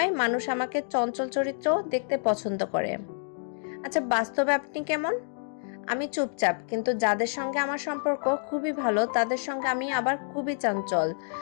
মানুষ আমাকে চঞ্চল চরিত্র দেখতে পছন্দ করে। আচ্ছা, বাস্তবে আপনি কেমন? আমি চুপচাপ, কিন্তু যাদের সঙ্গে আমার সম্পর্ক খুবই ভালো তাদের সঙ্গে আমি আবার খুবই চঞ্চল।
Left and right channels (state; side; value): silent; right; digital silence